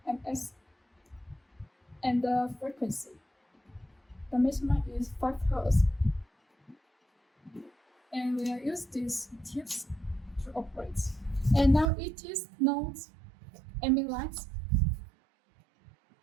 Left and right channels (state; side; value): drops out; left; at 11.9 s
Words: ms, and the frequency, the maximum is 5 Hz. And we will use these tips to operate. And now it is not aiming lights,